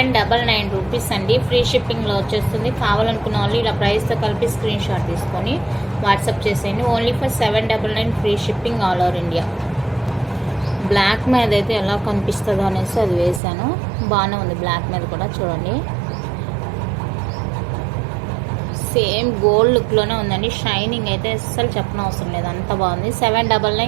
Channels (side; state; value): left; drops out; at 13.4 s